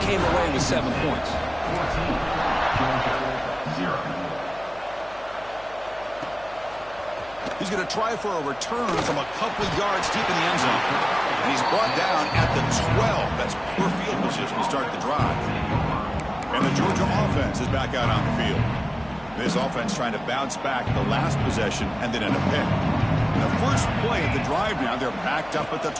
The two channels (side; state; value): left; noise; hum, 22 dB below the sound